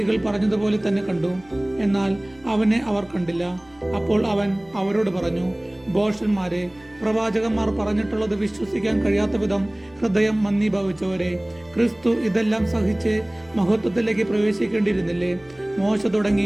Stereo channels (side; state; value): left; noise; rumble, 28 dB below the sound